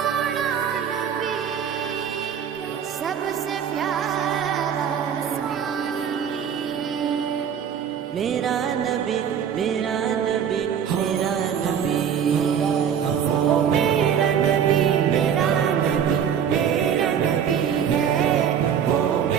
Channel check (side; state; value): left; quieter; 8.3 dB